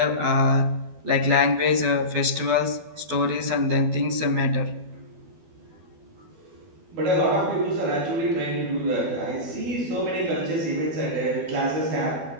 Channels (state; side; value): late; left; 12 ms